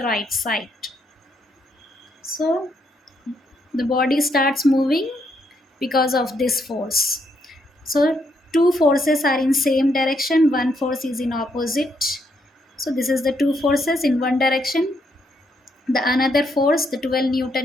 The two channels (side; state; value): both; normal; correlation 0.76